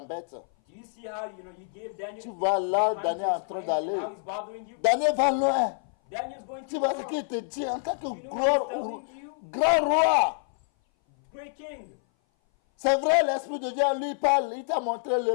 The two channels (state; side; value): silent; right; 58 dB below the other